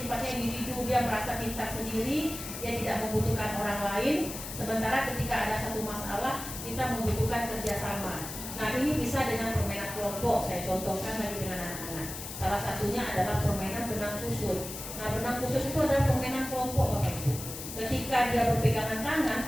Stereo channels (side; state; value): left; noise; hiss, 9 dB below the sound